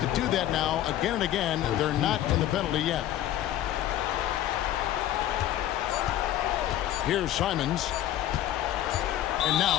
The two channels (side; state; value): right; quieter; 12.6 dB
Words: do that now again and again. They're not in the penalty yet. Here's Simons. And